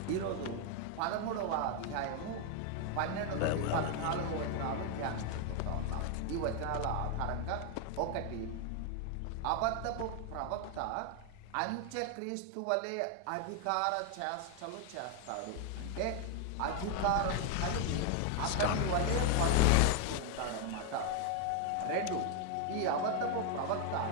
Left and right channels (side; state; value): both; different; correlation 0.00